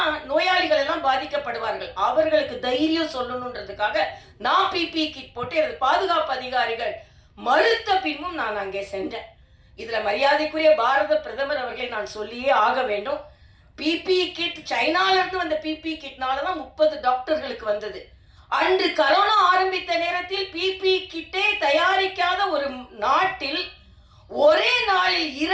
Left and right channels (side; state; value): both; identical; correlation 1.00